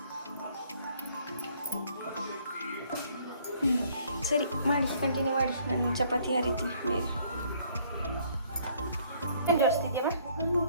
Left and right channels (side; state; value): both; inverted; correlation -0.63